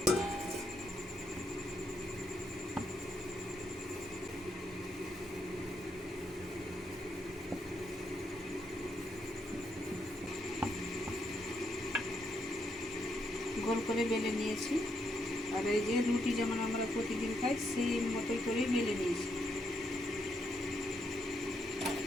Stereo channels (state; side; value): normal; both; correlation 0.78